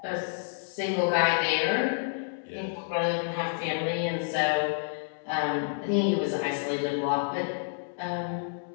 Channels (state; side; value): silent; right; digital silence